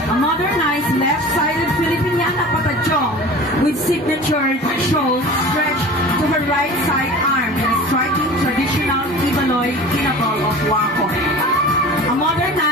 A modernized left-sided Filipiniana patajong with signature shows stretched to her right side arm in a striking traditional Ibaloy kinabal of Wakon. A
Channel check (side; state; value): both; normal; correlation 0.39